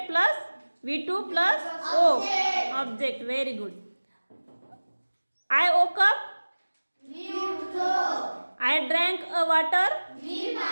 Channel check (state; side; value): inverted; both; correlation -1.00